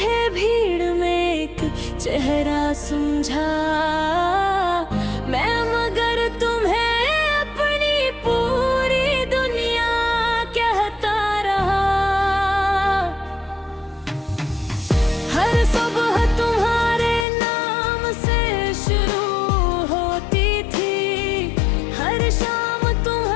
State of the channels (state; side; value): drops out; right; at 17.2 s